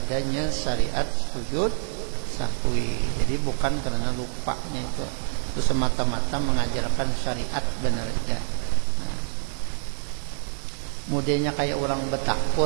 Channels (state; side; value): silent; left; digital silence